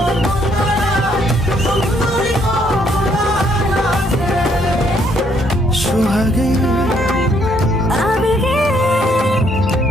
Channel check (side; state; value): both; normal; correlation 0.69